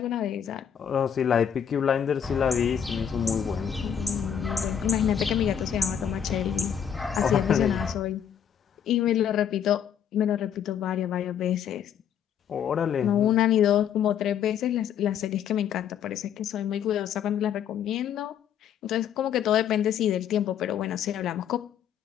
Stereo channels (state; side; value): quieter; right; 8.7 dB